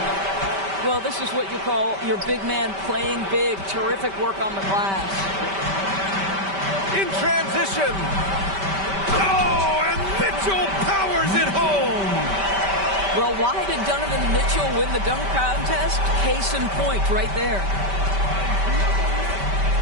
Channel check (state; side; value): late; left; 5.1 ms